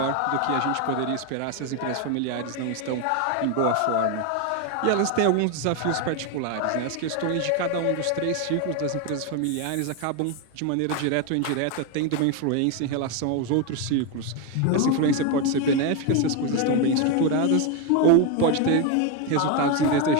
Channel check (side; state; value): both; different; correlation 0.02